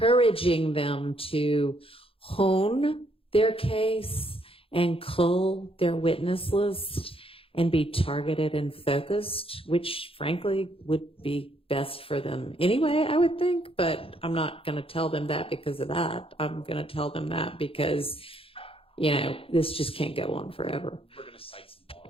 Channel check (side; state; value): right; late; 0.27 ms